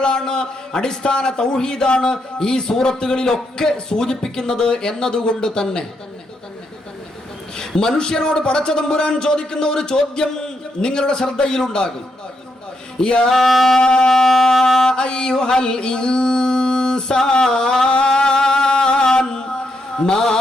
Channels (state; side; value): normal; both; correlation 0.80